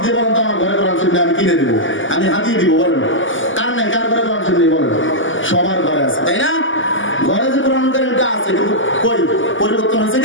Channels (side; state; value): right; late; 0.57 ms